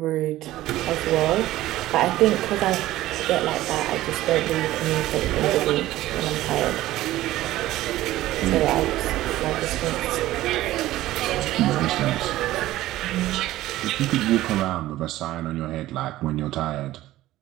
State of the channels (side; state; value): left; quieter; 15.6 dB